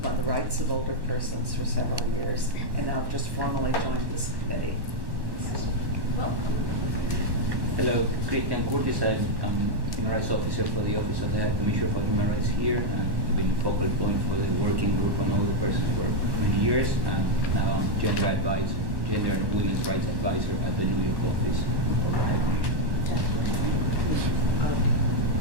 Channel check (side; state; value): left; late; 1.1 ms